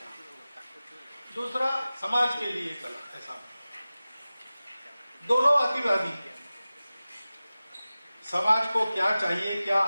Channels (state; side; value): inverted; both; correlation -0.96